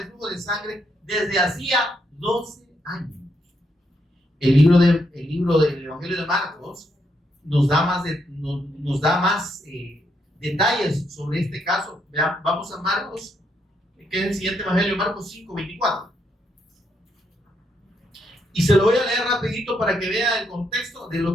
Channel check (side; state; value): both; normal; correlation 0.77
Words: flujo de sangre desde hacía 12 años. El libro del Evangelio de Marcos nos da más detalles sobre este caso. Vean, vamos a Marcos, que es el siguiente Evangelio, Marcos 5:24. Y se lo voy a leer rapidito para que vea el contexto de